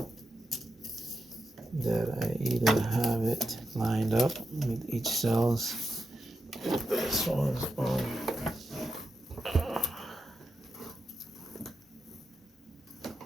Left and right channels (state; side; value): normal; both; correlation 0.86